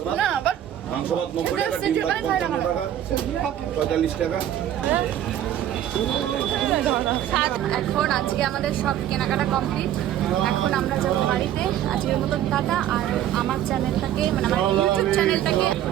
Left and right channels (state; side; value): quieter; left; 11.5 dB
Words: ভাত, না বাট মাংস ভাত 90 টাকা, ডিম ভাত 55 টাকা, 45 টাকা। এখন আজকে আমাদের সব কেনাকাটা কমপ্লিট। এখন আমরা যাবো বাড়িতে। আজকের মতন টাটা। আর আমার চ্যানেলটাকে, মানে আমার ইউটিউব চ্যানেলটাকে